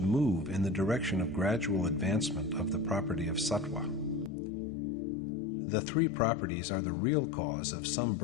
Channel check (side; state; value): right; drops out; at 4.3 s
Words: move in the direction of gradual advancement of the property of sattva. The three properties are the real cause of some